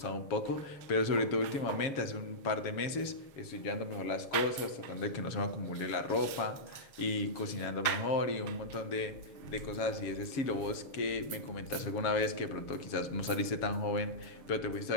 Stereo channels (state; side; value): late; right; 7.3 ms